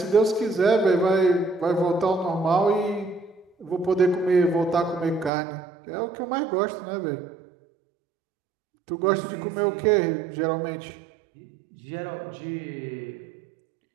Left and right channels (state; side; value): drops out; left; at 5.3 s